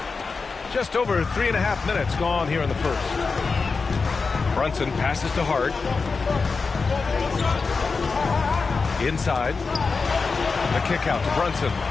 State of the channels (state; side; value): quieter; right; 4.6 dB